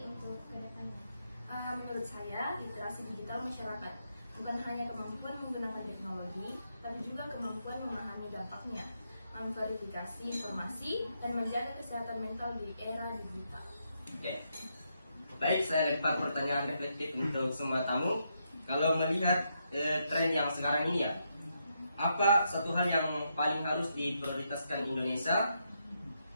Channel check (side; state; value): both; inverted; correlation -0.80